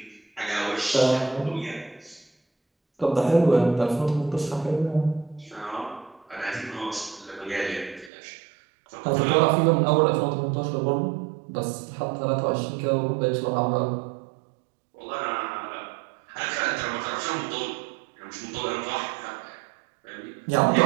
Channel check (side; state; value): left; drops out; at 8.1 s